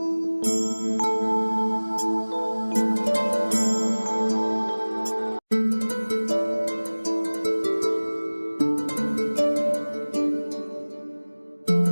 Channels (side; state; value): both; inverted; correlation -1.00